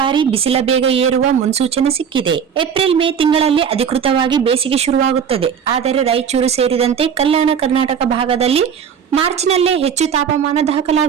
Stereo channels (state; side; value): quieter; left; 7.5 dB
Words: ಬಿಸಿಲ ಬೇಗ ಏರುವ ಮುನ್ಸೂಚನೆ ಸಿಕ್ಕಿದೆ. ಏಪ್ರಿಲ್ ಮೇ ತಿಂಗಳಲ್ಲಿ ಅಧಿಕೃತವಾಗಿ ಬೇಸಿಗೆ ಶುರುವಾಗುತ್ತದೆ. ಆದರೆ ರಾಯಚೂರು ಸೇರಿದಂತೆ ಕಲ್ಯಾಣ ಕರ್ನಾಟಕ ಭಾಗದಲ್ಲಿ ಮಾರ್ಚ್ನಲ್ಲೇ ಹೆಚ್ಚು ತಾಪಮಾನ